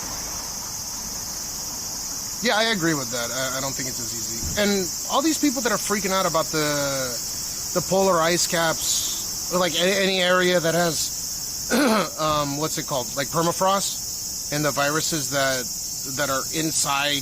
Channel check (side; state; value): both; identical; correlation 1.00